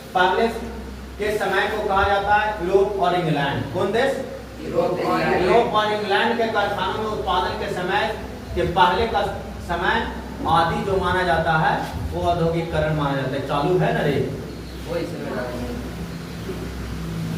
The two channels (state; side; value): identical; both; correlation 1.00